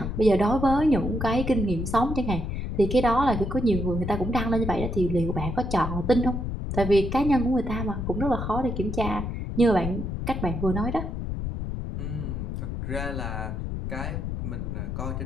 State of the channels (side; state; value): left; noise; rumble, 4 dB below the sound